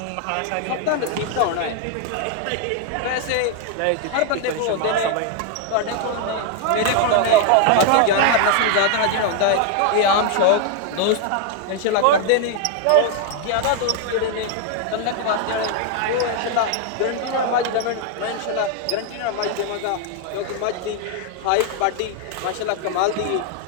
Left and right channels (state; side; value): different; both; correlation 0.00